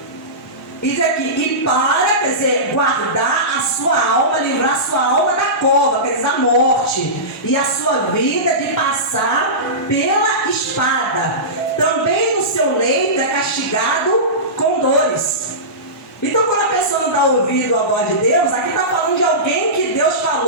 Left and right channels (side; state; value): both; normal; correlation -0.20